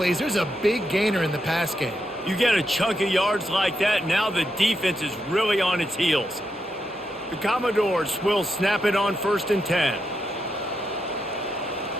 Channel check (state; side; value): normal; both; correlation 0.83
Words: There's a big gainer in the pass game. You get a chunk of yards like that, now the defense is really on its heels. The Commodores will snap it on 1st and 10.